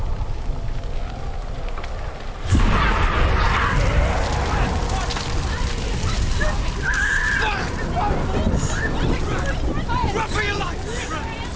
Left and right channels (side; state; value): both; identical; correlation 1.00